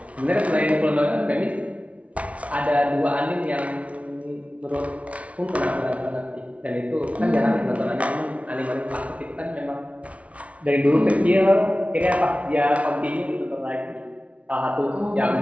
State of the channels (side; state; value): left; late; 0.065 ms